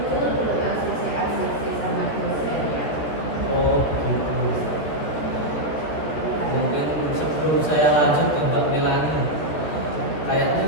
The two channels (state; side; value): late; right; 13 ms